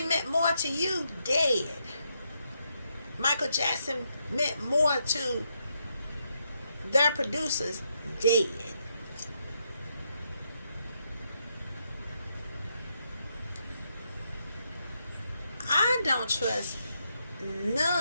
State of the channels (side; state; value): both; inverted; correlation -0.80